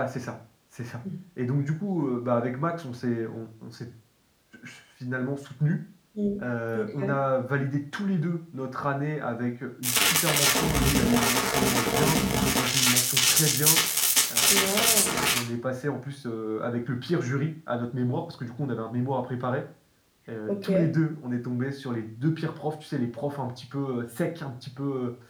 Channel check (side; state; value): both; identical; correlation 1.00